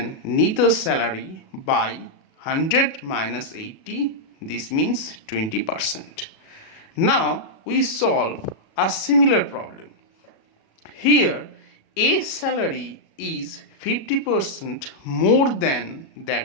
Nita's salary by 100 minus 80. This means 20%. Now we solve a similar problem. Here A's salary is 50% more than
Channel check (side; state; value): right; late; 37 ms